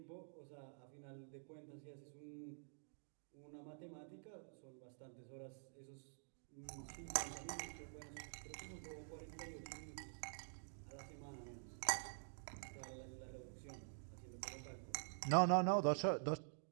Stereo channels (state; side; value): silent; left; digital silence